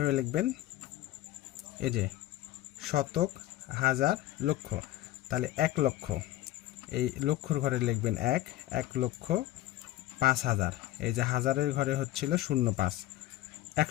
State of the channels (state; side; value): quieter; right; 15.0 dB